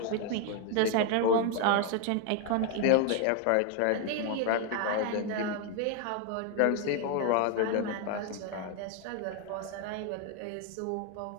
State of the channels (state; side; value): different; both; correlation 0.00